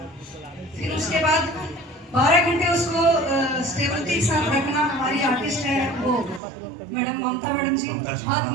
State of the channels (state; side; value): drops out; left; at 6.4 s